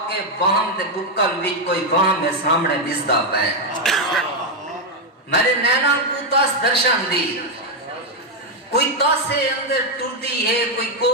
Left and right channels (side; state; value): both; normal; correlation 0.02